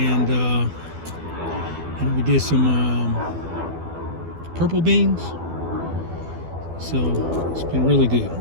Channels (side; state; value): left; late; 12 ms